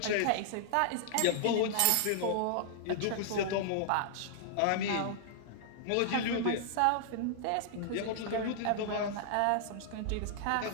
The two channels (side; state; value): both; different; correlation -0.01